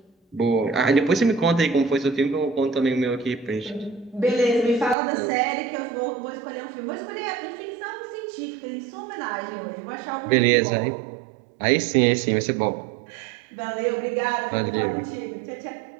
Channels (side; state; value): left; drops out; at 5.0 s